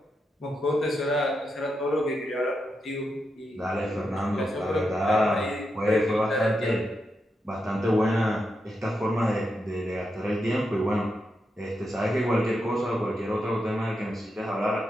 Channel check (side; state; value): both; normal; correlation 0.85